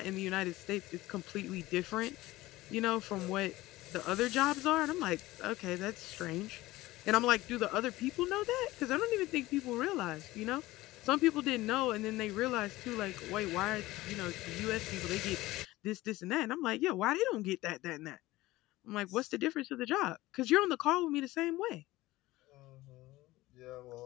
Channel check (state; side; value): quieter; right; 18.1 dB